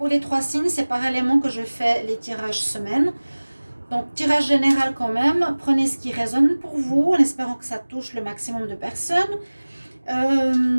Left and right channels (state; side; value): inverted; both; correlation -1.00